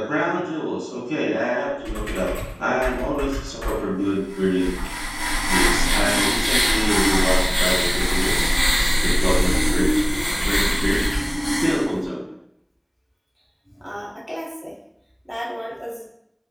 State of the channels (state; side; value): identical; both; correlation 1.00